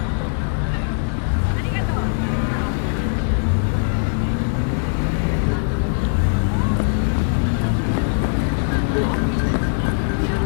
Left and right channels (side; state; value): right; silent; 65 dB below the other